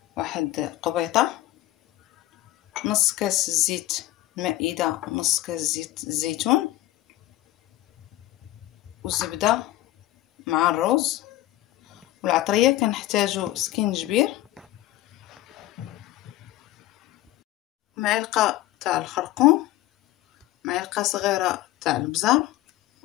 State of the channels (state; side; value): quieter; right; 16.0 dB